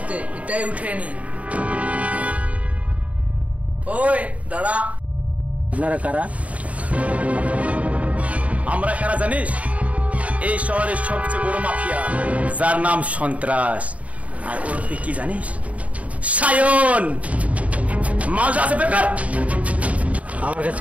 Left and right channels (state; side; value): late; left; 0.068 ms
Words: এটাই উঠে নি। ওই দাঁড়া। আপনারা কারা? আমরা কারা জানিস? এই শহরের সবচেয়ে বড় মাফিয়া, যার নাম সন্ত্রাস। আর ওর তুই কি জানিস? সায়ন। মাল আছে বেকার। আমার কাছে